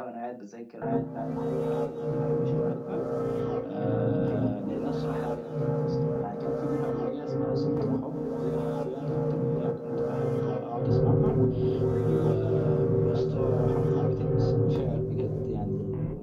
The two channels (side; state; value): both; identical; correlation 1.00